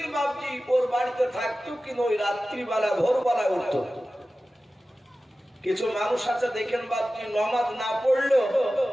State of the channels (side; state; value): both; normal; correlation 0.95